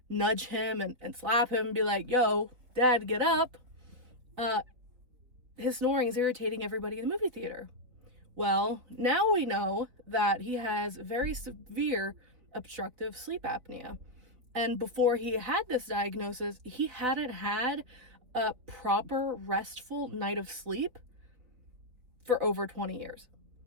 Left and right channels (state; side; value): late; left; 3.7 ms